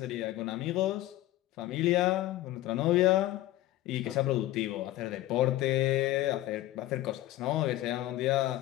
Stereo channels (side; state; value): right; quieter; 15.5 dB